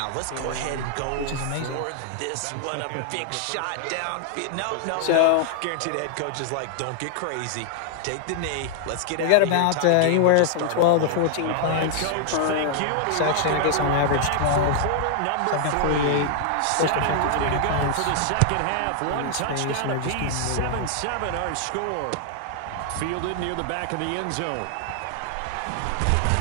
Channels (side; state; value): both; different; correlation 0.00